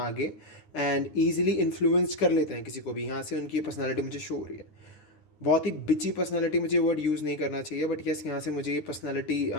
एंड ईजिली इन्फ्लुएंस कर लेते हैं किसी को भी। यहाँ से उनकी पर्सनालिटी मुझे शो हो रही है, बहुत ही बिची पर्सनालिटी। मुझे वर्ड यूज़ नहीं करना चाहिए, बट यस, यहाँ से मुझे ये पर्सनालिटी,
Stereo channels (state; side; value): late; right; 10 ms